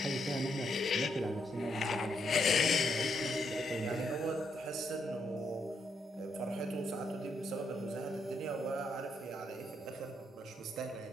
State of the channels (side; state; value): both; normal; correlation 0.77